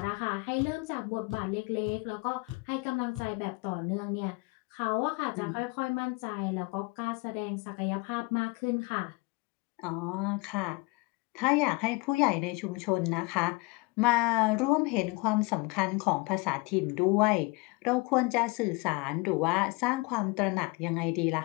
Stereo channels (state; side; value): quieter; right; 26.6 dB